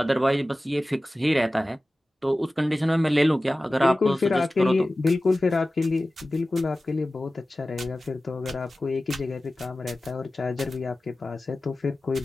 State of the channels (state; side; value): normal; both; correlation 0.96